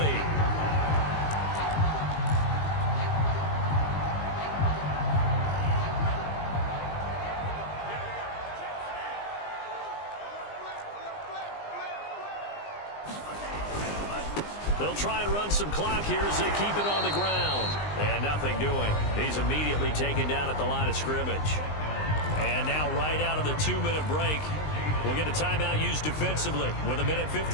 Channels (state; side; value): late; right; 20 ms